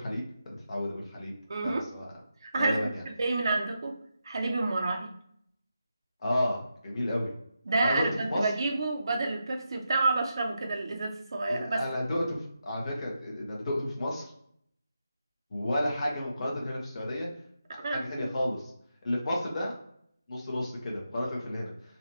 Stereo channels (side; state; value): both; inverted; correlation -0.86